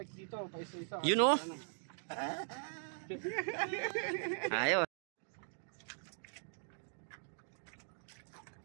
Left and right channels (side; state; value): left; silent; digital silence